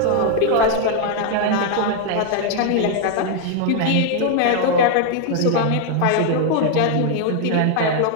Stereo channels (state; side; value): different; both; correlation 0.00